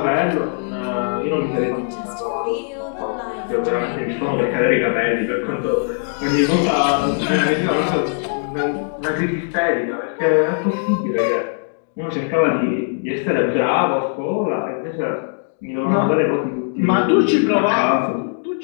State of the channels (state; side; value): silent; right; digital silence